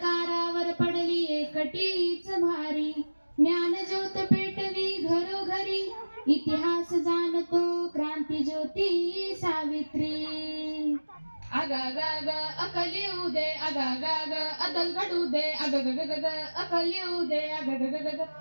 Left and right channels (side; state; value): both; inverted; correlation -1.00